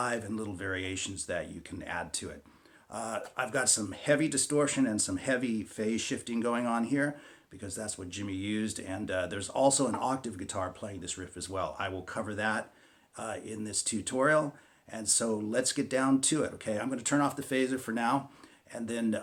and little variations that you can add to it. I've got some heavy distortion and some heavy phase shifting going on here because that's what Jimmy used, and there's also an octave guitar playing this riff as well. I will cover that in this tutorial, and so let's get down to it, okay? I'm going to turn off the phaser for now, and then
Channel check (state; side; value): identical; both; correlation 1.00